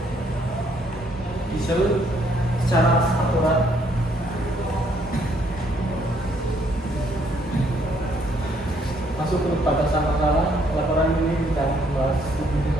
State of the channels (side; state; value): both; normal; correlation 0.68